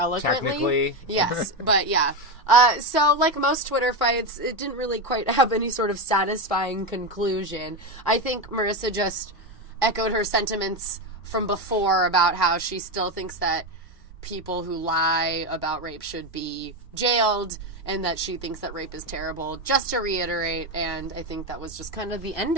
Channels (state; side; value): normal; both; correlation 0.13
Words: Technically. Yes, but yeah. So, like most Twitter fights, it didn't really quite have any sort of satisfying conclusion. I think Marissa just echoed her sentiments from before about how she still thinks that people who lie about rape should be jailed, and that she thinks that rape is terrible, just to reiterate. And I think that was just kind of the end